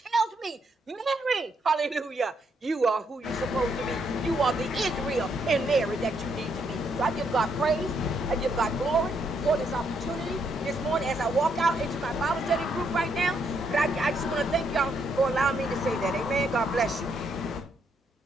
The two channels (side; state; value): both; normal; correlation 0.75